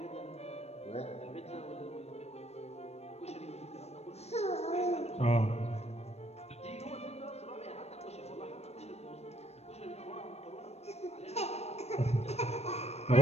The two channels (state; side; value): late; right; 0.31 ms